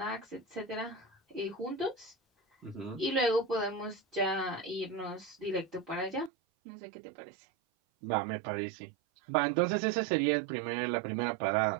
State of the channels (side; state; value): left; drops out; at 6.3 s